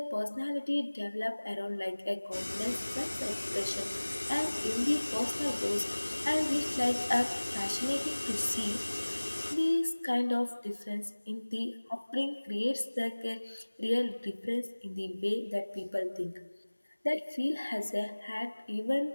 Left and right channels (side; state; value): both; inverted; correlation -1.00